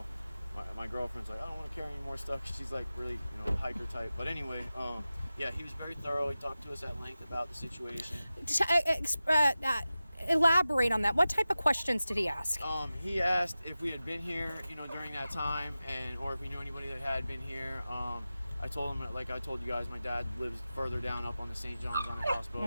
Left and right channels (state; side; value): inverted; both; correlation -0.95